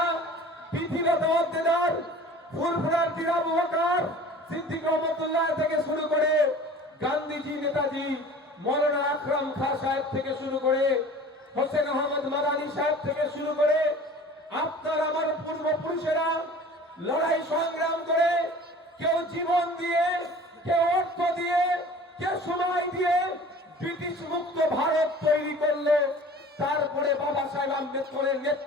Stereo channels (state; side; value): normal; both; correlation 0.44